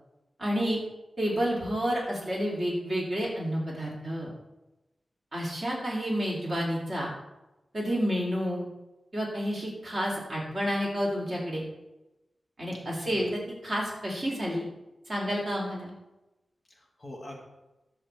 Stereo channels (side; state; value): both; normal; correlation 0.93